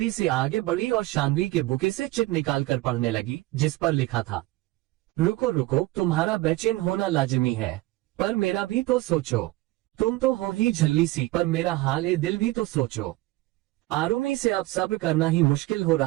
से आगे बढ़ी और शानवी के बुके से चिट निकाल कर पढ़ने लगी जिस पर लिखा था, रुको रुको, तुम्हारा बेचैन होना लाजिमी है, पर मेरा भी तो सोचो, तुम तो हो ही झल्ली सी, पर मेरा हाल ए दिल भी तो सोचो। आरुमी से अब सब्र करना ही मुश्किल हो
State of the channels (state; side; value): quieter; left; 18.9 dB